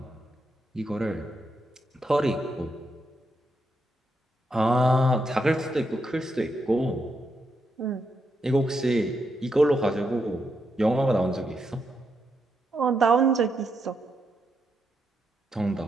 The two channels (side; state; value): both; normal; correlation 0.81